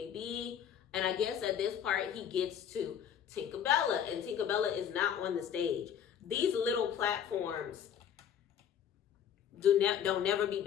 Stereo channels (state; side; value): quieter; right; 8.8 dB